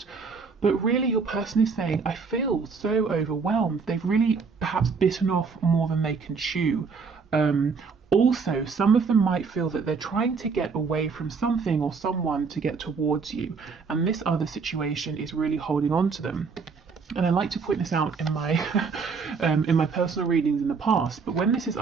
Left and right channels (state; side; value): quieter; left; 5.1 dB